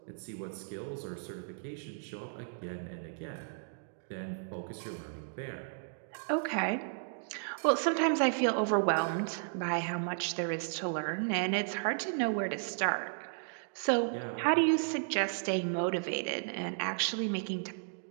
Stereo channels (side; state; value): left; silent; digital silence